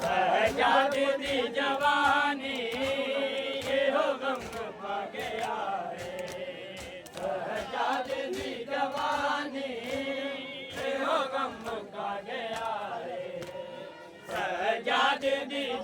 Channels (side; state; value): both; identical; correlation 1.00